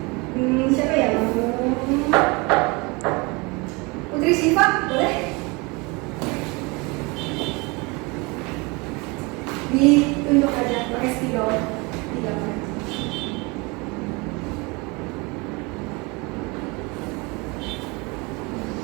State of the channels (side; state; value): left; quieter; 27.0 dB